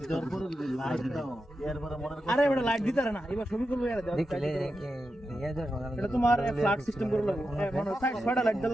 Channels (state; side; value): normal; both; correlation 0.89